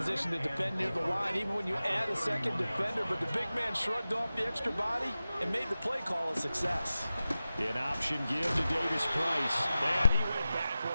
to defend near the line, even when you add a 2nd defender, but the big man shrugged off the extra body and made the play call a success. An option give to Davis Price. And he went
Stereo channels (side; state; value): both; inverted; correlation -0.95